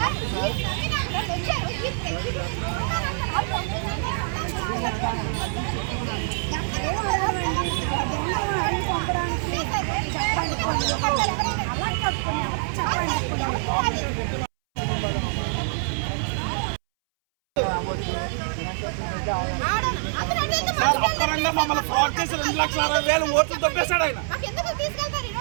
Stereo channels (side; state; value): left; silent; 62 dB below the other